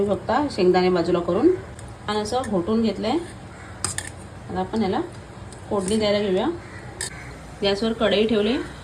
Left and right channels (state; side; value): identical; both; correlation 1.00